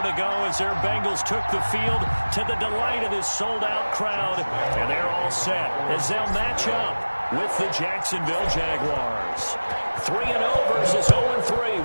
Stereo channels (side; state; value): both; inverted; correlation -1.00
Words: ago as their Bengals took the field to the delight of this sold-out crowd. And they're all set as they'll match up with the Jacksonville Jaguars. 3-0 versus